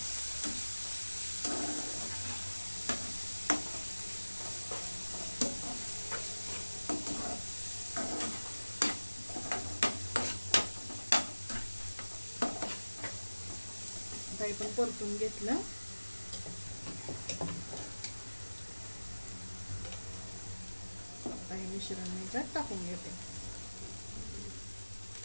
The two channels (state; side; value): inverted; both; correlation -1.00